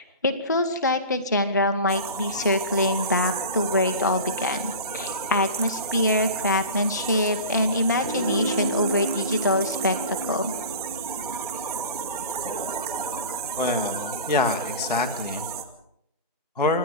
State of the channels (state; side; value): inverted; both; correlation -0.34